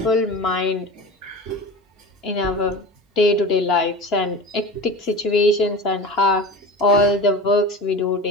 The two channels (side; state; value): both; normal; correlation 0.32